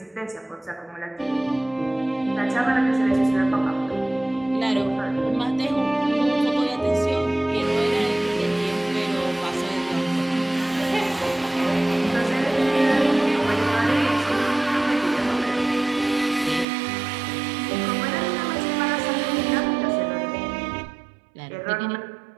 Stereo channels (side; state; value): left; drops out; at 16.7 s